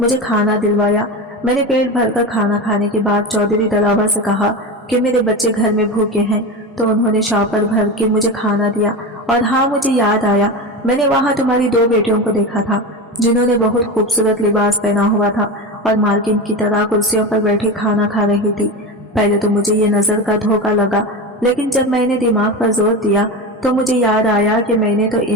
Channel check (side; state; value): both; normal; correlation 0.23